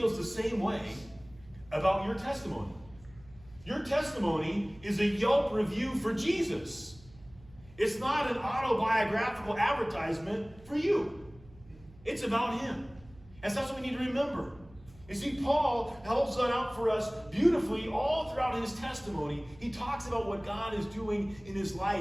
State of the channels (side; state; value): right; noise; hum, 23 dB below the sound